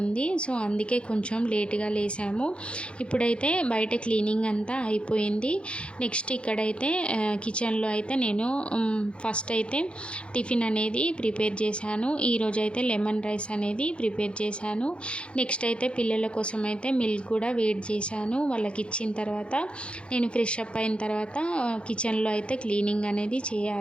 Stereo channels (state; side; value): late; right; 0.058 ms